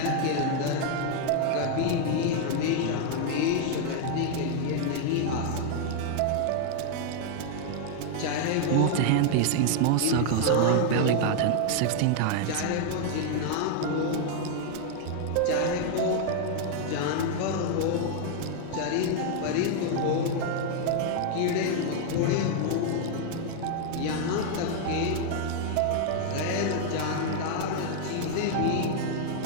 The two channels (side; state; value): both; different; correlation 0.00